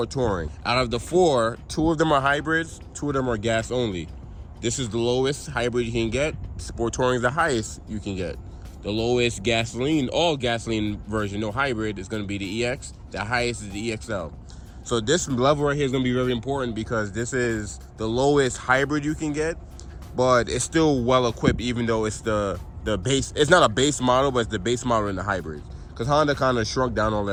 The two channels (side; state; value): both; identical; correlation 1.00